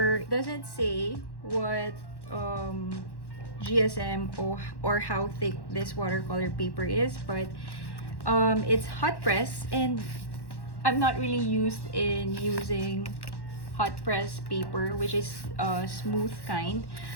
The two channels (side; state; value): right; late; 1.1 ms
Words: It doesn't say what GSM or how thick this watercolor paper is, but it's hot press, and I'm not really used in using hot press paper, which is smooth kind.